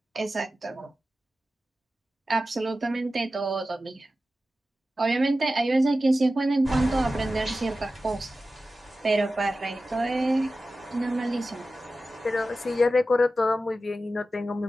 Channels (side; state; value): both; normal; correlation 0.94